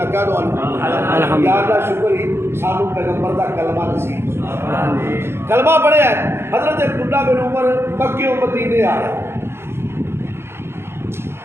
کہہ دو الحمدللہ یا اللہ شکر ہی سانو پیغمبر دا کلمہ نصیب کلمہ پڑھیا ہے حضرت عبداللہ بن عمر مکے و مدینے آ رہے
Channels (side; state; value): left; late; 0.12 ms